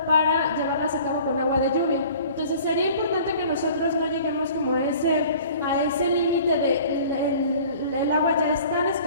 para llevarlas a cabo con agua de lluvia. Entonces sería importante que nosotros no lleguemos como a ese límite de el agua ya es tan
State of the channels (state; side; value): inverted; both; correlation -0.48